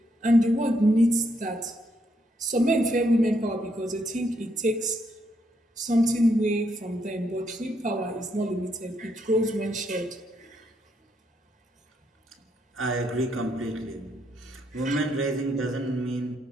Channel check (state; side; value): normal; both; correlation 0.76